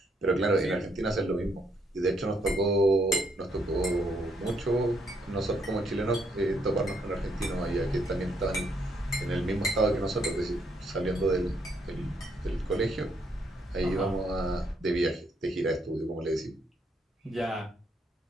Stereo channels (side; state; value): both; normal; correlation 0.73